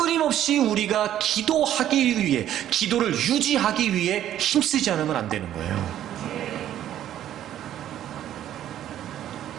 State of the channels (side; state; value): left; quieter; 11.6 dB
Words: 우리가 기도하기 위해, 기도를 유지하기 위해 힘쓰지 않으면 안 되는 거예요.